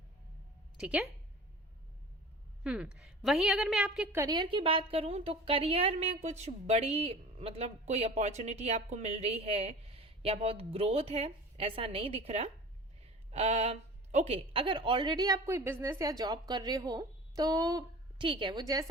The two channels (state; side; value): normal; both; correlation 0.39